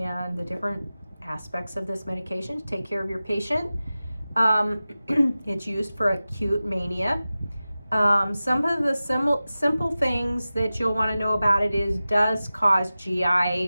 the different aspects of this medication to take care of your patient. It's used for acute mania. Some of the simple things that you'll want to know about it is does cause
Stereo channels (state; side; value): inverted; both; correlation -0.95